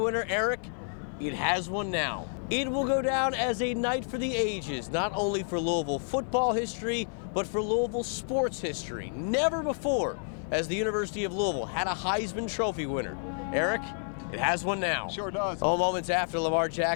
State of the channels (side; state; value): right; silent; digital silence